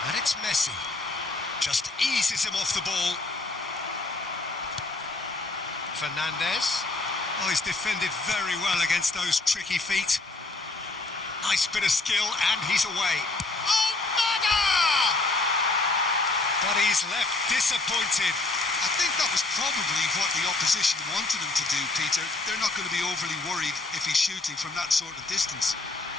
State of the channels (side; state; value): right; quieter; 3.2 dB